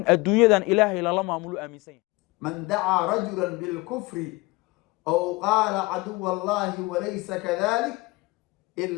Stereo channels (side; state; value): right; quieter; 23.4 dB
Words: الدنيا إلهي لما أملو آمين سيه من دعا رجلا بالكفر أو قال عدو الله وليس كذلك